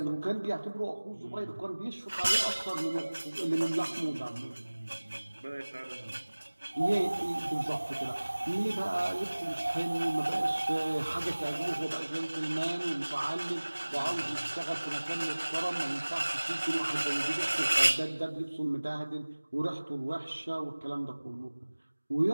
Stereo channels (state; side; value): inverted; both; correlation -1.00